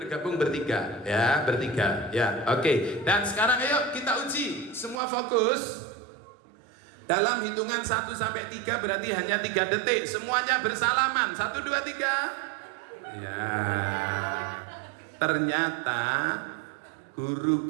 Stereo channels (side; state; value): left; drops out; at 5.0 s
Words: bertiga ya, bertiga ya. Oke. Dan sekarang ayo kita uji. Semua fokus. Dalam hitungan 1 sampai 3 berarti hanya 3 detik. Semuanya bersalaman. 1, 2, 3. Ya. Ternyata